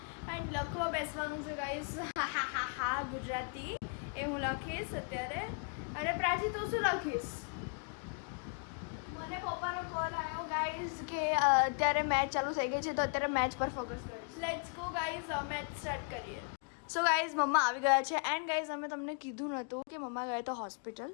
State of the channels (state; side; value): quieter; right; 39.3 dB